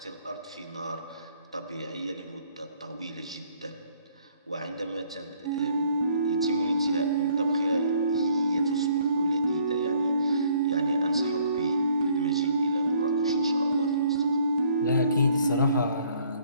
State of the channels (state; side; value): inverted; both; correlation -0.62